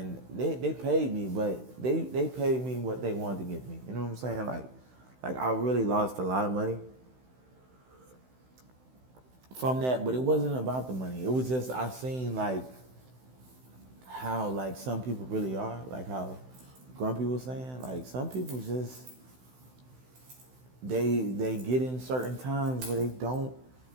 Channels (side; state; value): left; late; 16 ms